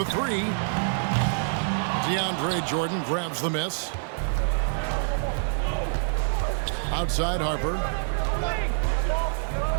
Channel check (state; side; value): silent; left; 61 dB below the other